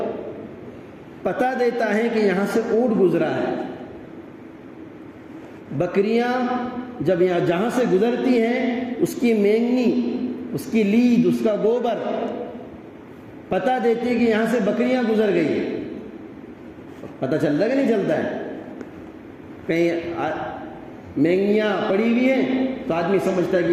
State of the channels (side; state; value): both; identical; correlation 1.00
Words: پتہ دیتا ہے کہ یہاں سے اونٹ گزرا ہے۔ بکریاں جب یہاں جہاں سے گزرتی ہیں اس کی مینگنی، اس کی لید، اس کا گوبر پتہ دیتی ہے کہ یہاں سے بکریاں گزر گئی ہیں۔ پتہ چلتا کہ نہیں چلتا ہے؟ کہیں مینگنیاں پڑی ہوئی ہیں تو آدمی سمجھتا ہے کہ